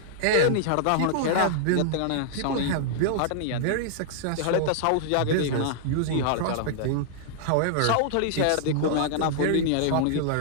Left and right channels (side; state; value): both; different; correlation -0.01